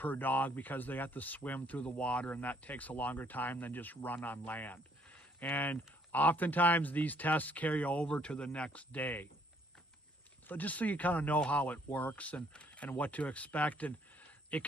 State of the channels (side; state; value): both; normal; correlation 0.65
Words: dog because they have to swim through the water, and that takes a longer time than just run on land. And oftentimes these tests carry over to the next day. So just so you kind of know how it works and what to expect. And it